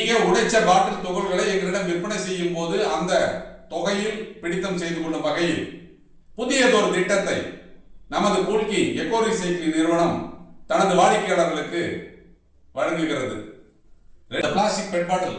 உடைச்ச பாட்டில் துகள்களை எங்களிடம் விற்பனை செய்யும் போது அந்த தொகையில் பிடித்தம் செய்து கொள்ளும் வகையில் புதியதொரு திட்டத்தை நமது கோல்கிங் எக்கோ ரீசைக்ளிங் நிறுவனம் தனது வாடிக்கையாளர்களுக்கு வழங்குகிறது. பிளாஸ்டிக் பெட்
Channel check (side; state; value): both; identical; correlation 1.00